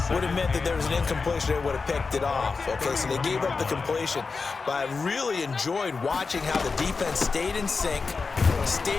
would have meant that there was an incompletion that would have picked it off. Okay, so they gave up the completion. But I really enjoyed watching how the defense stayed in sync,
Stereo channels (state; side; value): quieter; right; 4.5 dB